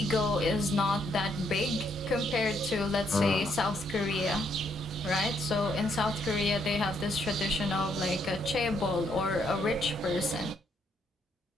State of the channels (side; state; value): both; normal; correlation 0.73